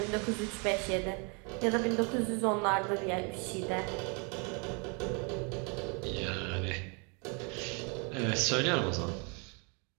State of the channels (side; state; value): left; quieter; 34.4 dB